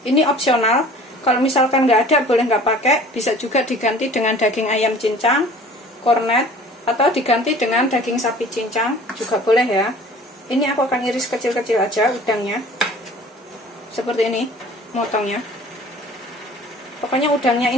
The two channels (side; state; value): both; normal; correlation 0.47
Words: Ini opsional. Kalau misalkan nggak ada, boleh nggak pakai. Bisa juga diganti dengan daging ayam cincang, kornet, atau diganti dengan daging sapi cincang juga boleh ya. Ini aku akan iris kecil-kecil aja udangnya. Seperti ini, motongnya. Pokoknya udangnya